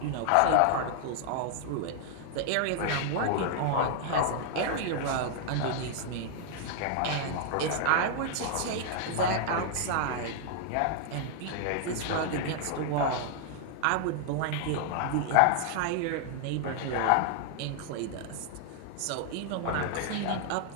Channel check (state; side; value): different; both; correlation 0.00